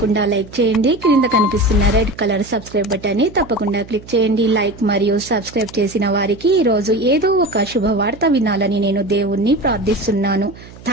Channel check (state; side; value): noise; right; hum, 19 dB below the sound